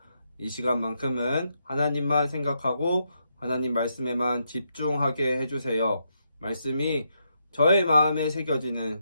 이 시간만큼은 하나님만 생각하고 하나님 말씀에만 집중하게 해주세요. 말씀이 저의 마음에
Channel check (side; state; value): both; inverted; correlation -0.80